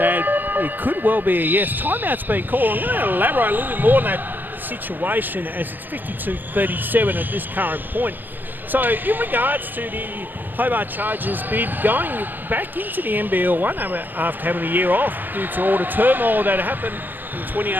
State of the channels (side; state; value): left; late; 0.089 ms